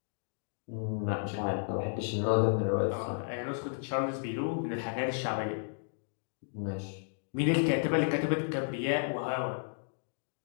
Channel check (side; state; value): right; silent; digital silence